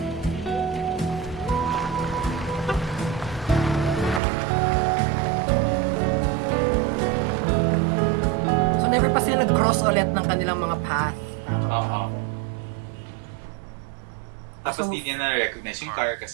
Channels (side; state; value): left; drops out; at 4.2 s